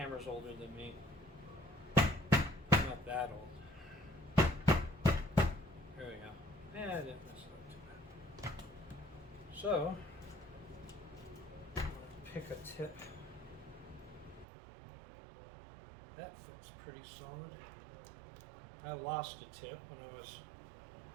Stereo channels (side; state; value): left; drops out; at 14.5 s